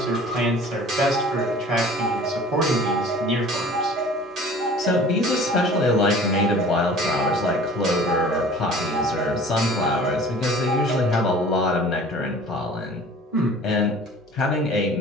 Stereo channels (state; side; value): normal; both; correlation 0.46